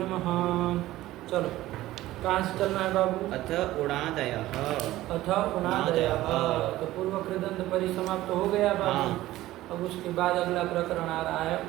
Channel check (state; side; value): quieter; left; 15.9 dB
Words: चलो कहाँ से चलना है बाबू? अथ उणादयः। अथ उणादयः तो पूर्व कृदंत परिसमाप्त हो गया बाबू। हाँ। अब उसके बाद अगला प्रकरण आ रहा है